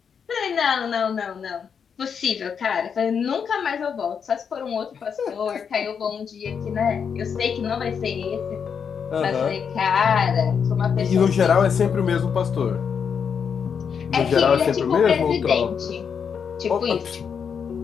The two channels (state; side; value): quieter; right; 6.8 dB